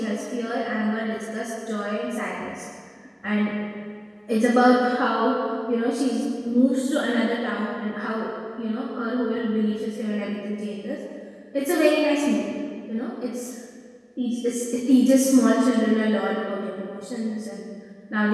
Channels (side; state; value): both; identical; correlation 1.00